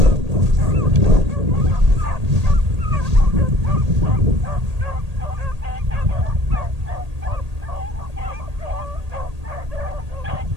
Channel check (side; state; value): left; late; 1.8 ms